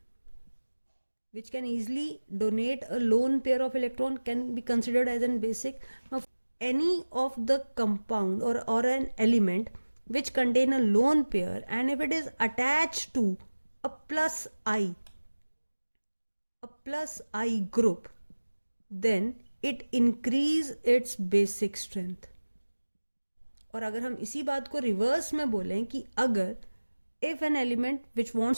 which can easily donate a lone pair of electron, can be considered as an basic. Now any of the compound or an element which contain a lone pair, and if it is attached to a plus I group, then it increase its basic strength. और अगर हम इसी बात को reverse में बोलें कि अगर if an element which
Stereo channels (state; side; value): inverted; both; correlation -1.00